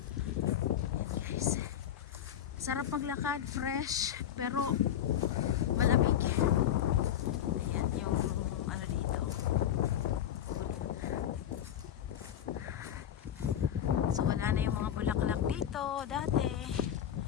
Ayan guys. Sarap maglakad, fresh, pero malamig. Ayan yung ano dito. So wala na yung mga bulaklak dito dati.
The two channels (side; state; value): right; quieter; 10.2 dB